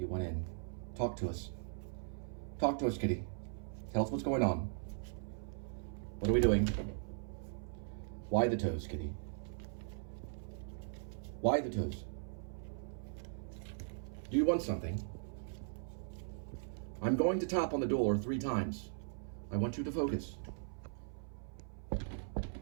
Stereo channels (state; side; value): silent; left; 52 dB below the other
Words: went in. Talk to us. Talk to us, Kitty. Tell us what's going on. What are we doing? Why the toes, Kitty? Why the toes? Do you want something? I'm going to tap on the door 3 times. I want you to focus.